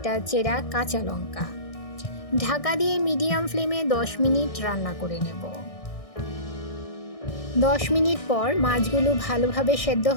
চেরা কাঁচা লঙ্কা। ঢাকা দিয়ে মিডিয়াম ফ্লেমে 10 মিনিট রান্না করে নেব। 10 মিনিট পর মাছগুলো ভালোভাবে সেদ্ধ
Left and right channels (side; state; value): right; late; 1.6 ms